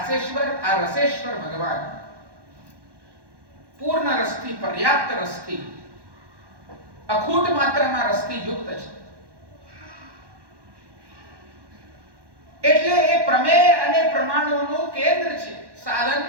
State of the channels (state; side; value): late; left; 1.1 ms